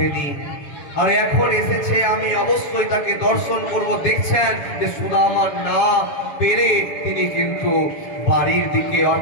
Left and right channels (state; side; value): late; right; 7.1 ms